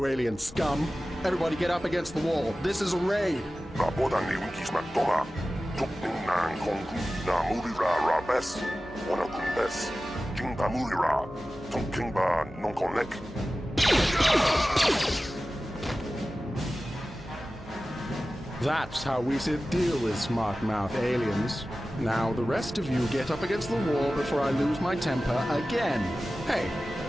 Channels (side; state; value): both; normal; correlation 0.95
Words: alien scum. Everybody get up against the wall. This is a raid. Naboda ni winkismak toma. Tukning nang kongku na murira rabes. Wana kumbes. Jingba murira. Tongkingba nonkonek. That's how we should deal with smart-mouth aliens. Now the rest of you get up against the wall before I lose my temper again. Hey,